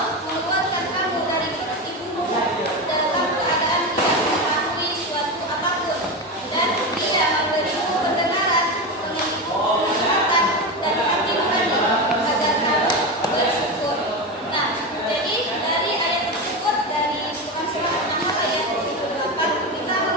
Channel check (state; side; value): normal; both; correlation 0.18